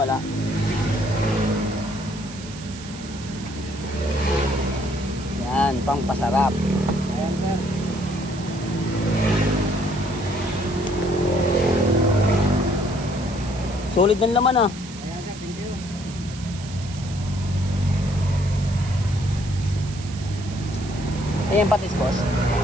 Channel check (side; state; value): right; noise; hiss, 15 dB below the sound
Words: Yan, pampasarap. Ayan sir. Solid ng laman ah. Ayan sir, thank you. Ayan patis boss.